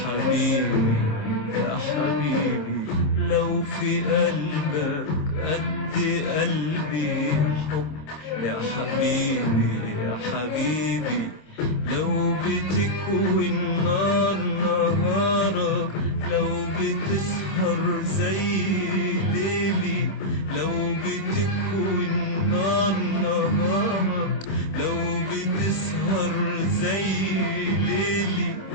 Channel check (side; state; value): right; late; 26 ms